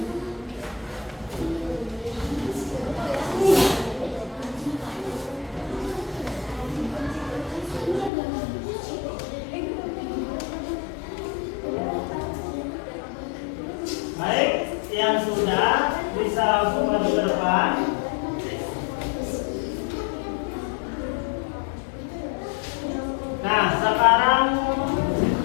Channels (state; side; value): drops out; right; at 8.1 s